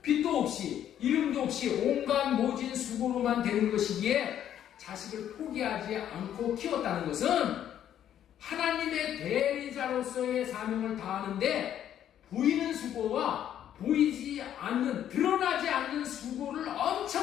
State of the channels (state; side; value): quieter; right; 10.5 dB